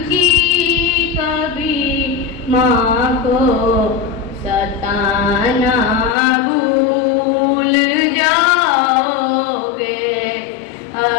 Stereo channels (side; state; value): right; drops out; at 6.2 s